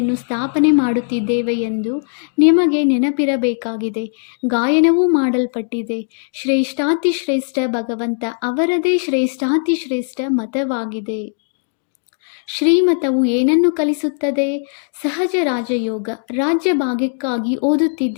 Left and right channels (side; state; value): right; silent; digital silence